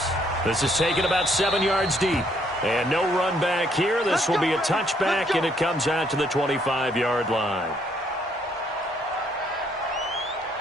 This is taken about 7 yards deep. And no run back here. This will be a touchback, and it comes out to the 25-yard line.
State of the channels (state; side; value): normal; both; correlation 0.69